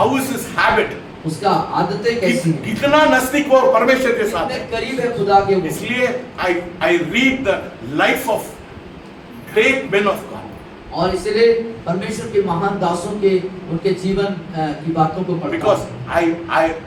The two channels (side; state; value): both; identical; correlation 1.00